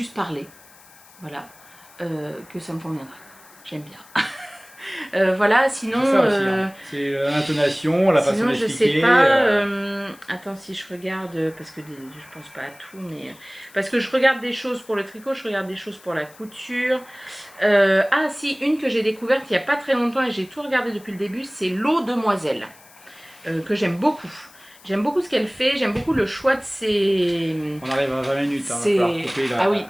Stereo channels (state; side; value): noise; left; hiss, 24 dB below the sound